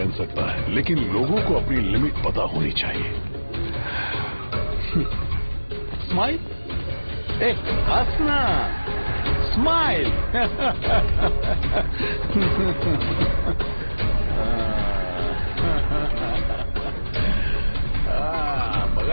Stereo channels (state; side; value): inverted; both; correlation -1.00